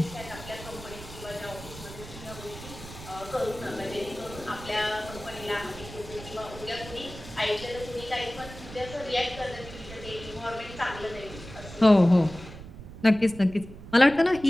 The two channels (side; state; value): right; noise; rumble, 14 dB below the sound